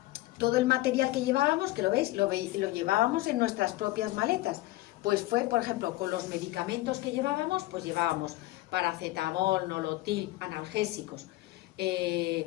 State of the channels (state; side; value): quieter; right; 18.2 dB